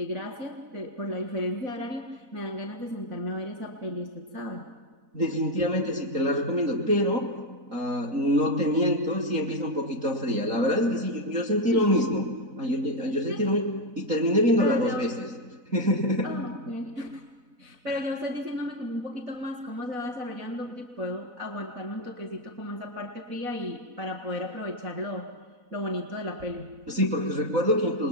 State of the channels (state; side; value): late; left; 4.0 ms